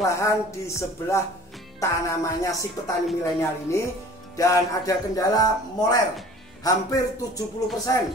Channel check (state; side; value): normal; both; correlation 0.46